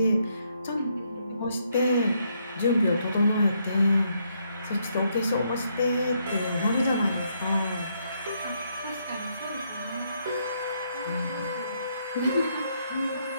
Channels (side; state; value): both; inverted; correlation -0.74